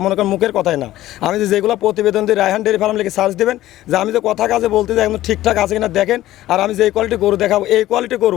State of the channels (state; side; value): quieter; right; 14.8 dB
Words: মনে করেন মুখের কথাই না। আমি যেগুলো প্রতিবেদন দিই, রায়হান ডেয়ারি ফার্ম লিখে সার্চ দেবেন, যে আমি যে কথা কাজে বলতে যাই একদম ঠিকঠাক আছে কিনা দেখেন। আর আমি যে কোয়ালিটি গরু দেখাবো, এই কোয়ালিটি